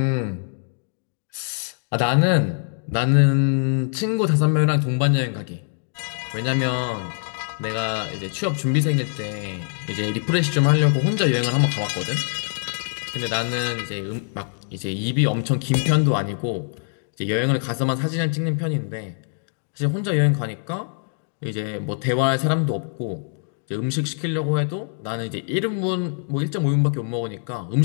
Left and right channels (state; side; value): silent; right; digital silence